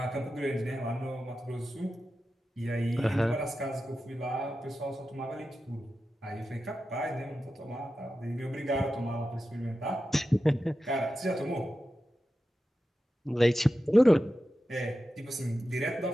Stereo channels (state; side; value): normal; both; correlation 0.92